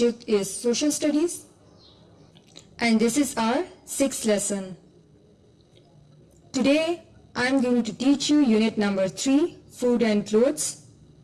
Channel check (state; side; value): identical; both; correlation 1.00